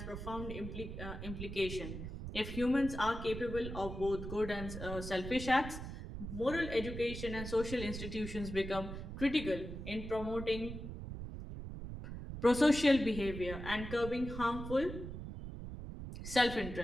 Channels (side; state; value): right; noise; rumble, 8 dB below the sound